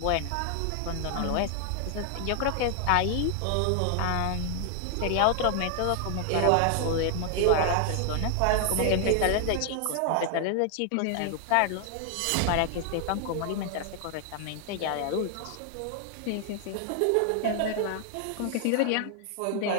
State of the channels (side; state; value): both; different; correlation 0.00